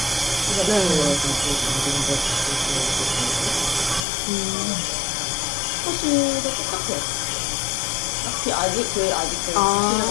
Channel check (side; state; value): right; drops out; at 4.0 s